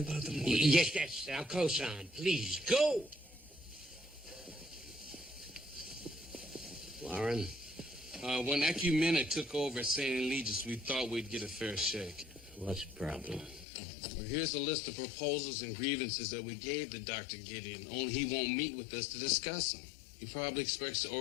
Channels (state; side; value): drops out; right; at 13.7 s